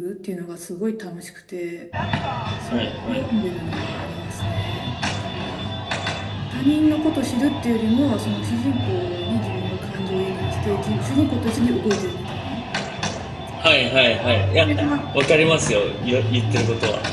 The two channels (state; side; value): identical; both; correlation 1.00